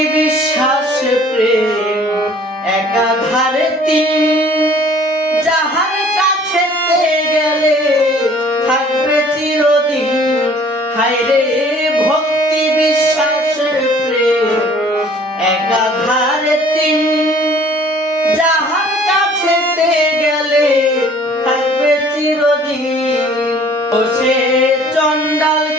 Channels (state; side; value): normal; both; correlation 0.54